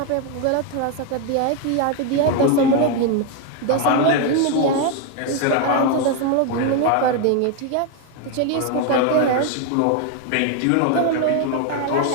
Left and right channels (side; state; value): both; different; correlation 0.01